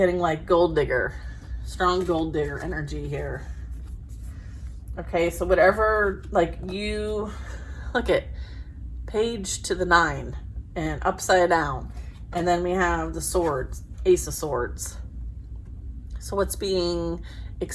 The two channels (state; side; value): identical; both; correlation 1.00